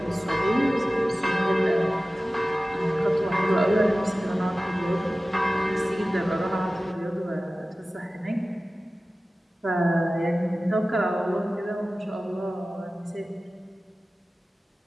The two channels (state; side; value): normal; both; correlation 0.97